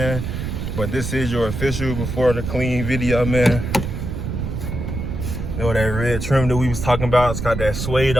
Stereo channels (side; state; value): right; noise; rumble, 4 dB below the sound